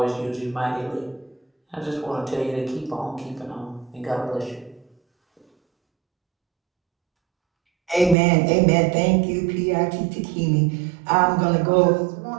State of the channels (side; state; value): left; drops out; at 8.2 s